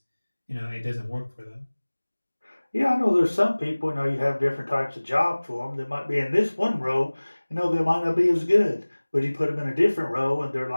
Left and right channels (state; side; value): inverted; both; correlation -1.00